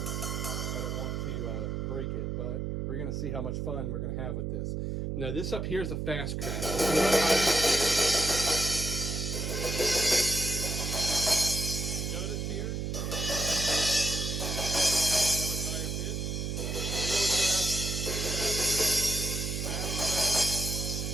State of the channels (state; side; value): noise; right; hum, 2 dB below the sound